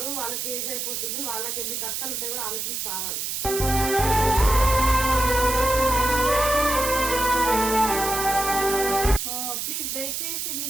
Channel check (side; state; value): right; noise; hiss, 3 dB below the sound